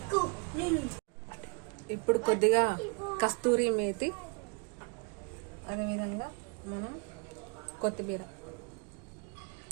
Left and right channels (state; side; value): quieter; left; 34.2 dB